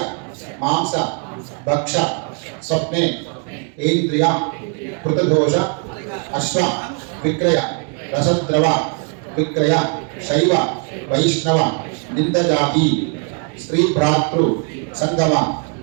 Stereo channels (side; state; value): left; quieter; 39.0 dB